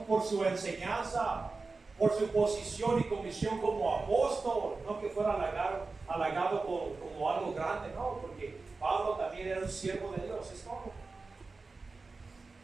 por su enseñanza, por su posición y comisión como apóstol, no que fuera halagado como algo grande, no, porque Pablo también era un siervo de Dios, es todo.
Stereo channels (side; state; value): left; quieter; 3.9 dB